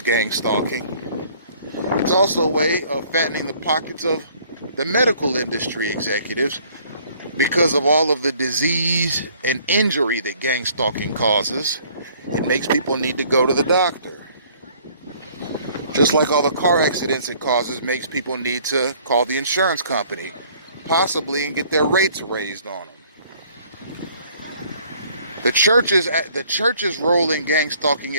gang stalking. It's also a way of fattening the pockets of the medical industry executives because of all of the disease and injury that gang stalking causes. It makes people need to go to the doctor. Just like all the car accidents it causes makes people need to call the insurance company, possibly, and get their rates raised on them. The church's role in gang stalking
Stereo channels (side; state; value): both; inverted; correlation -0.58